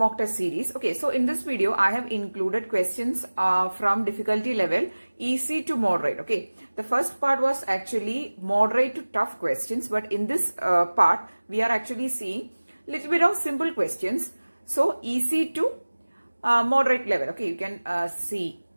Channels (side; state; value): both; inverted; correlation -1.00